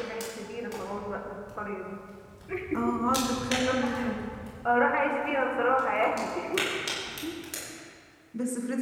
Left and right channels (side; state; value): both; identical; correlation 1.00